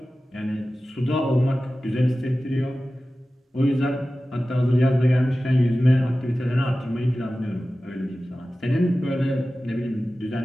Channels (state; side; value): normal; both; correlation 0.95